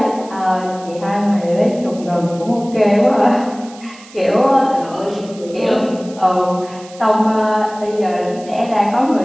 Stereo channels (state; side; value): noise; right; hiss, 21 dB below the sound